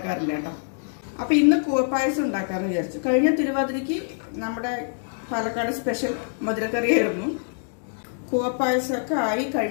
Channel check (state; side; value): silent; right; digital silence